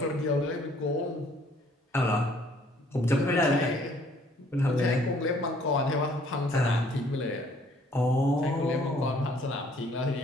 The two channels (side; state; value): both; normal; correlation 0.60